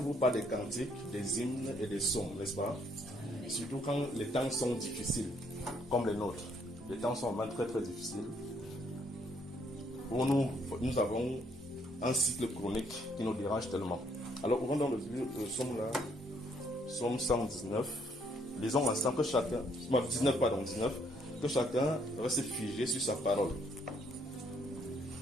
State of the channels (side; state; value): both; normal; correlation 0.69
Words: par des cantiques, des hymnes et des psaumes, n'est-ce pas? Surtout quand les temps sont difficiles, comme les nôtres. Les temps sont vraiment très très difficiles. Pour nous avons un cycle chronique qui nous dérange tellement. Alors, ouvrons dans le psaume là, psaume 119. Lisons ensemble que chacun, 19, que chacun reste figé sur sa parole.